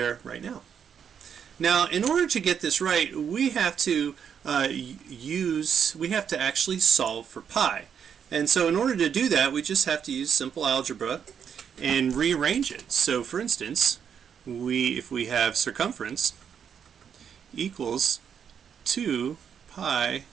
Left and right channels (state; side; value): quieter; left; 7.7 dB